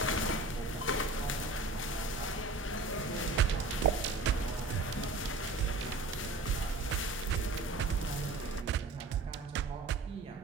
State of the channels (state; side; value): quieter; left; 3.2 dB